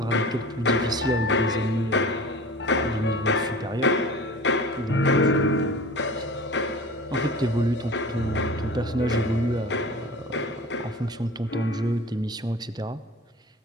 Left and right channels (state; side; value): normal; both; correlation 0.39